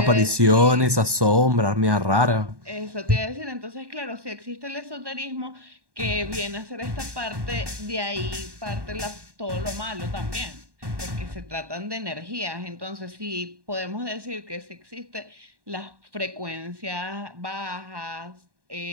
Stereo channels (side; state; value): left; late; 1.1 ms